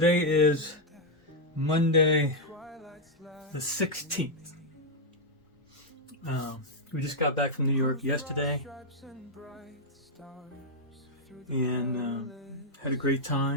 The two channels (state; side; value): normal; both; correlation -0.02